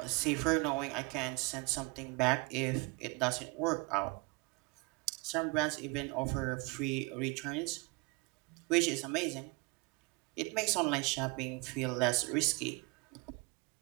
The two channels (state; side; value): quieter; left; 27.3 dB